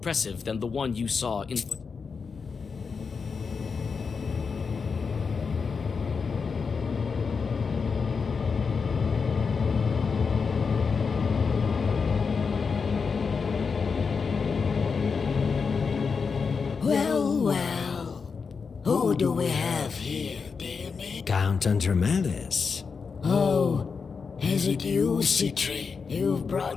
than the one you saw in. Well, who do we have here, dear me? Count Andromedas. Oh, is it you, Citri? You've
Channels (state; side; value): quieter; right; 5.4 dB